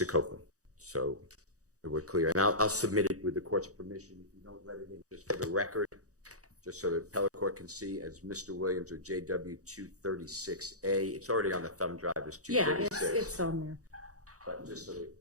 Copeland. So we're clear. And I'll submit it with the court's permission if you don't let it in, just for the record, just so the appellate court can see as Mr. Williams or JW 236A. It's already on the thumb drive as 236. Yeah, it's on there. But just so that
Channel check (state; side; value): late; left; 0.66 ms